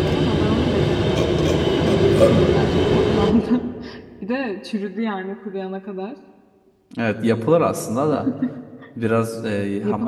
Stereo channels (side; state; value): both; identical; correlation 1.00